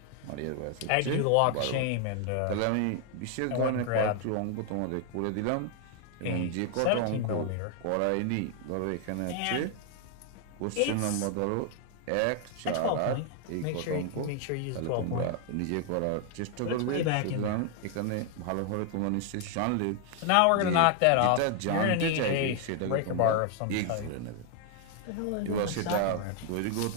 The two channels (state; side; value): different; both; correlation 0.00